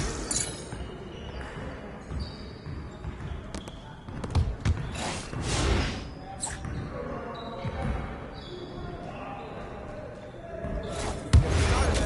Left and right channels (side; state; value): both; identical; correlation 1.00